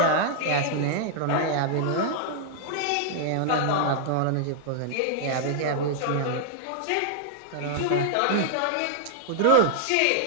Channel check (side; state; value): both; different; correlation -0.01